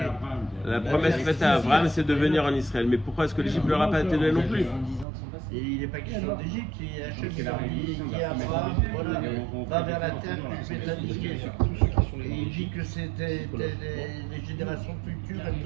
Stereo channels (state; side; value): drops out; left; at 5.1 s